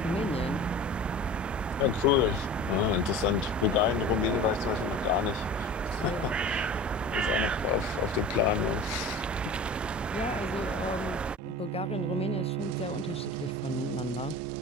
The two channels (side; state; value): both; normal; correlation 0.37